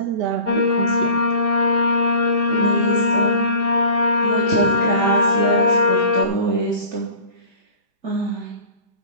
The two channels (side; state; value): left; late; 5.0 ms